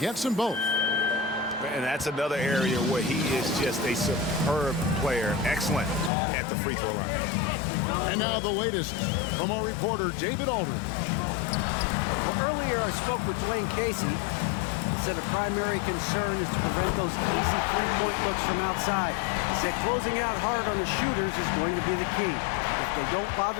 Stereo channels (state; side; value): drops out; right; at 6.1 s